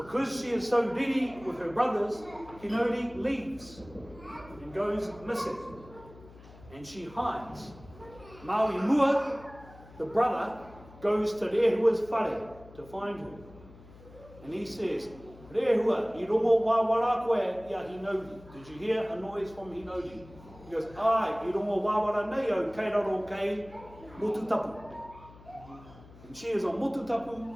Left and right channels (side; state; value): left; noise; hum, 21 dB below the sound